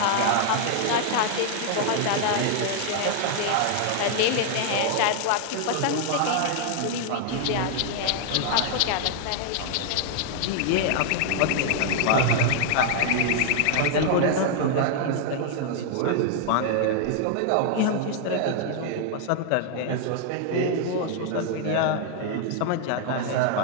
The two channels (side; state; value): both; different; correlation 0.00